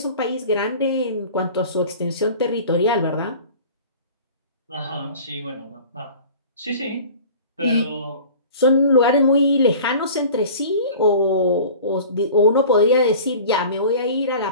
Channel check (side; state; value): both; inverted; correlation -0.42